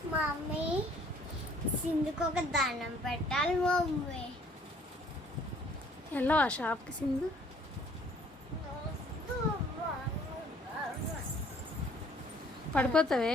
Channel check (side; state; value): both; normal; correlation 0.58